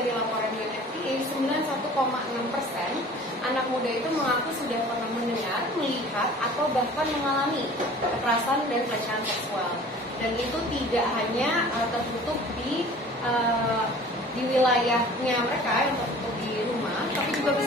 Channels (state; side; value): normal; both; correlation 0.46